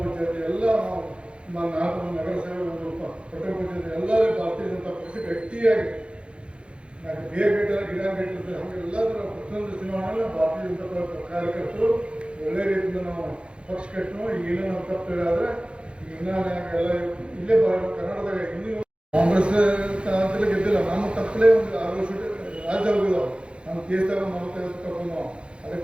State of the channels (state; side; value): late; left; 0.057 ms